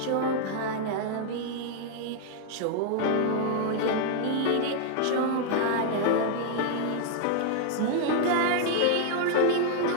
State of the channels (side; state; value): both; different; correlation 0.00